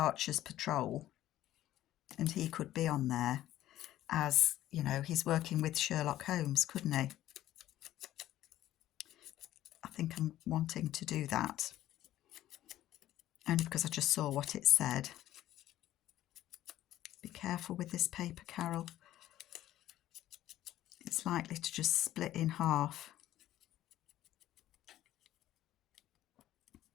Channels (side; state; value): right; quieter; 13.6 dB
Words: Patrol and he could be on there as, you know, he's working with Sherlock Holmes, couldn't he? I think I'm wanting to do that. Only because I just saw what it said. Be careful with this paper, Carol. It's likely to just split in half.